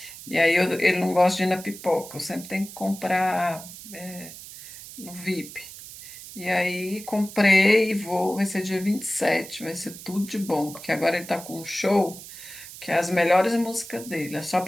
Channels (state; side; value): noise; right; hiss, 14 dB below the sound